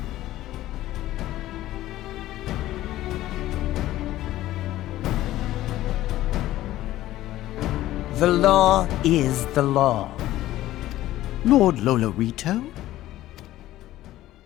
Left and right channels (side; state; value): right; quieter; 14.9 dB